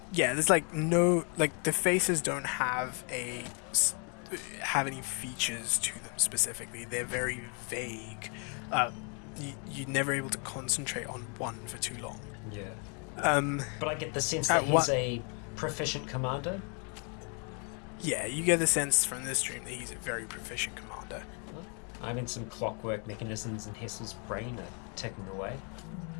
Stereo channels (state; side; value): quieter; right; 37.7 dB